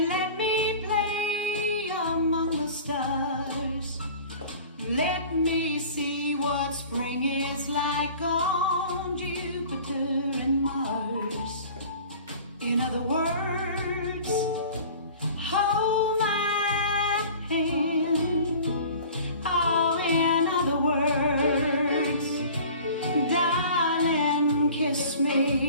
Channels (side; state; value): both; inverted; correlation -0.43